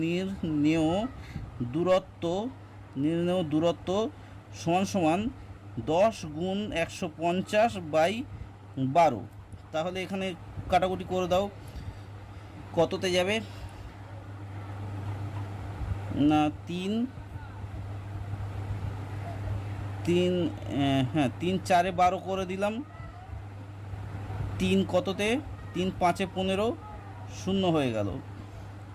নির্ণেয় দূরত্ব সমান 10 গুণ 150/12। তাহলে এখানে কাটাকুটি করে দাও, কততে যাবে না 3 4-এ 12 করে দিলাম, 3 কততে 3 5-এ 15 শূন্য হয়ে গেল।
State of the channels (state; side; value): identical; both; correlation 1.00